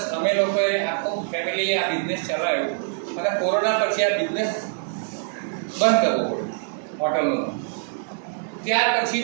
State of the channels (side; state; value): left; silent; digital silence